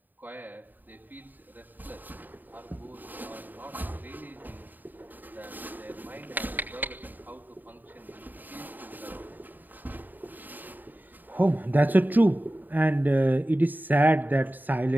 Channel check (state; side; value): late; left; 0.088 ms